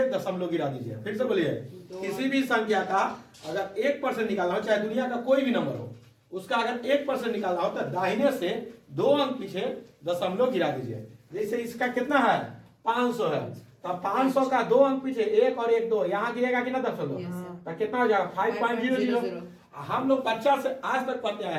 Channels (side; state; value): both; identical; correlation 1.00